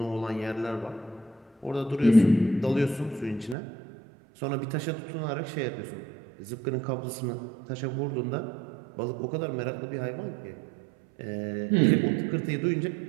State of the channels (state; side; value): drops out; left; at 3.6 s